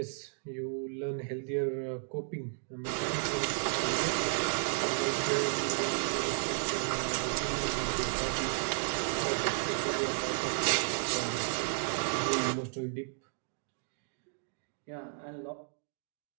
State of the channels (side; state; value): left; silent; digital silence